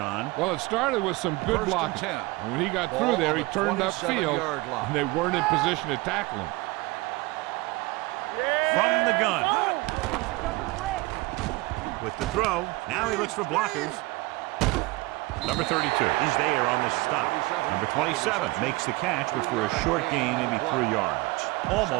Well, it started with some good blocking. And when he got through there, he turned upfield, and they weren't in position to tackle him. From the gun. With the throw, now he looks for blockers. Number 32 is there on the stop. Number 27 makes the catch, which for a short gain, maybe 3 yards.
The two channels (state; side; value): quieter; left; 22.5 dB